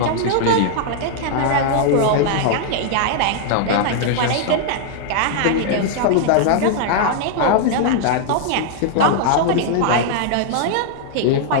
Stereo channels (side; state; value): both; different; correlation 0.00